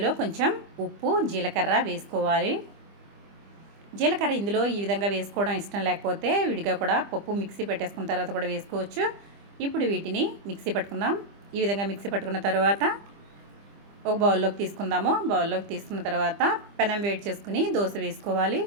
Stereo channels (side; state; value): left; late; 25 ms